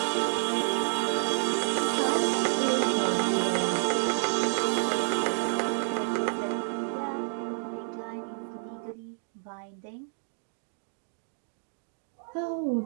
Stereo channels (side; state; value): left; silent; digital silence